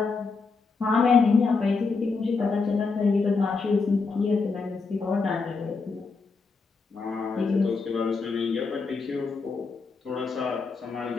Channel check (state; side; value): quieter; right; 4.5 dB